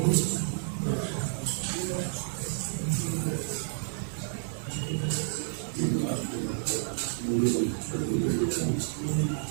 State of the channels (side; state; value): left; silent; digital silence